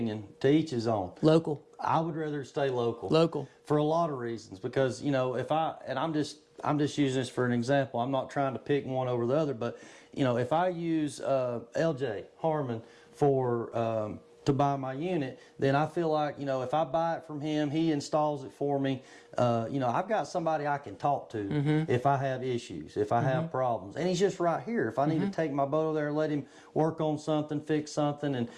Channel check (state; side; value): identical; both; correlation 1.00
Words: to each his own. Local. I would rather stay local. Local. For a lot of reasons, because, you know, I'm just using this for an example. I'm not trying to pick one over the other, but, you know, if I use LJ Harmon for to buy my unit, then I feel like, you know, if I buy it from him, he installs it for me. You know, I've got somebody I can talk to if I have issues, if I have problems, and he's just right here. If I need to take my boat over there and let him work on something, fix something,